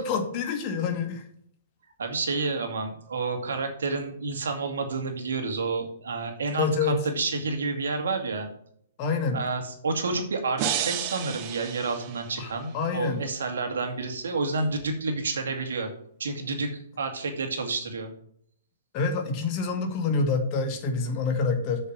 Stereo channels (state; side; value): inverted; both; correlation -0.40